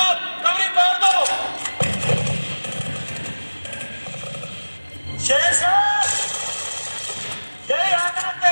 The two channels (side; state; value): both; inverted; correlation -1.00